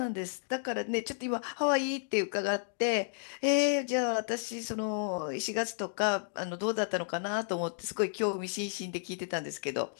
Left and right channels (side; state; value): right; silent; digital silence